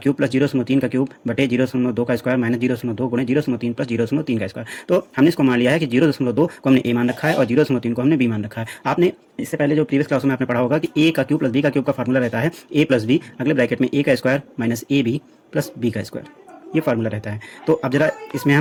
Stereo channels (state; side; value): identical; both; correlation 1.00